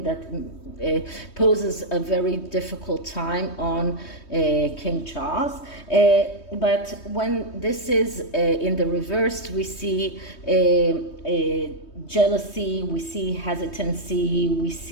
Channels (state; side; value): late; right; 3.2 ms